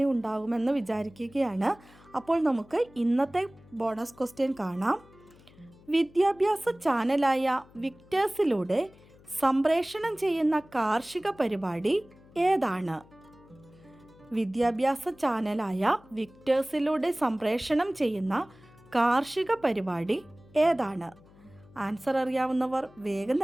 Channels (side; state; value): left; noise; hum, 25 dB below the sound